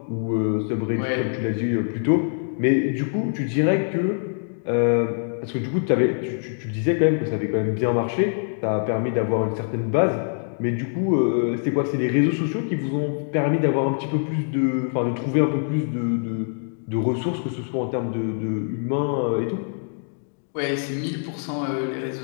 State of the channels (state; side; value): silent; right; digital silence